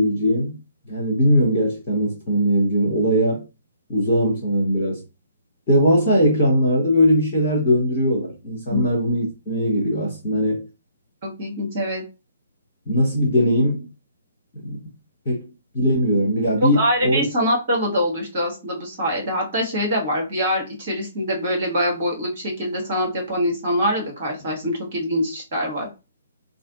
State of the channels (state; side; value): inverted; both; correlation -0.64